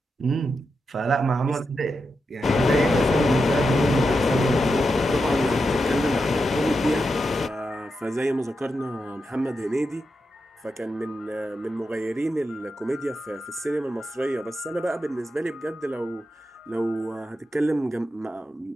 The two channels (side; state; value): both; normal; correlation 0.87